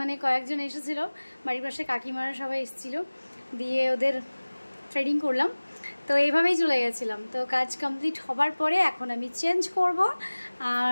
কয়েকজন এসেছিল, বাড়ির পাশে কাকিমারা সবাই এসেছিলো, দিয়ে ওদের থ্রেডিং করলাম। তো এইভাবেই চলে গেছিলাম। তো কাজ কমপ্লিট হবার পরে এখন আমি চেঞ্জ করব।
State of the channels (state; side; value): inverted; both; correlation -1.00